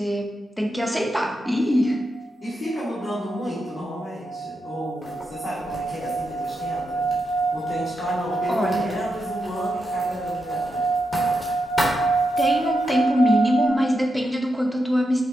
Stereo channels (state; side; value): normal; both; correlation 0.85